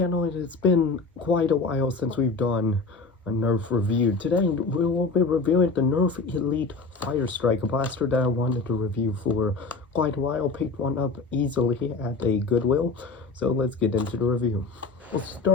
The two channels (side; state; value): right; quieter; 4.1 dB